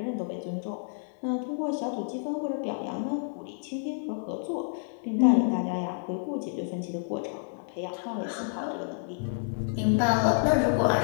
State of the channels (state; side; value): silent; right; digital silence